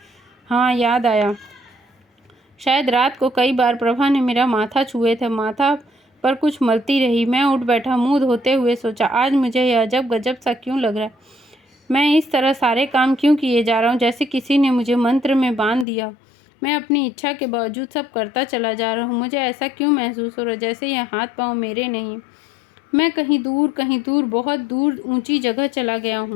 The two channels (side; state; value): right; drops out; at 15.9 s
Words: हाँ, याद आया। शायद रात को कई बार प्रभा ने मेरा माथा छुए थे। माथा पर कुछ मलती रही। मैं उठ बैठा, मुंह धोते हुए सोचा, आज मुझे यह अजब गजब सा क्यों लग रहा है। मैं इस तरह सारे काम क्यों किए जा रहा हूँ, जैसे किसी ने मुझे मंत्र में बांध दिया। मैं अपनी इच्छा के बावजूद सब करता चला जा रहा हूँ। मुझे ऐसा क्यों महसूस हो रहा है जैसे यह हाथ पाँव मेरे नहीं। मैं कहीं दूर, बहुत दूर ऊंची जगह चला गया